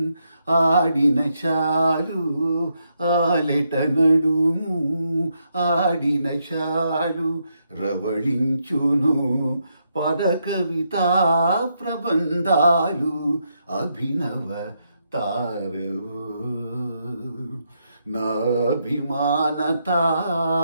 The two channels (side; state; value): both; inverted; correlation -0.79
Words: ఆడిన చాలు ఆలెట నడుము ఆడిన చాలు రవళించును పద కవితా ప్రబంధాలు అభినవ తారవో నాభిమాన